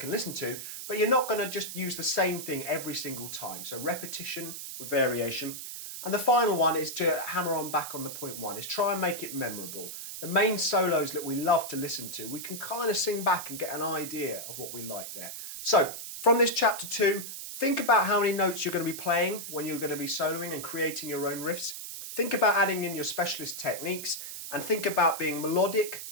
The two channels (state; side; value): noise; right; hiss, 8 dB below the sound